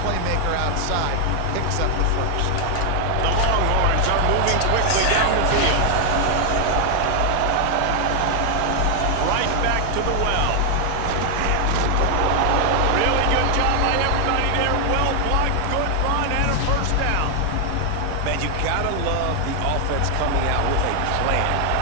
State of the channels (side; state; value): both; different; correlation 0.00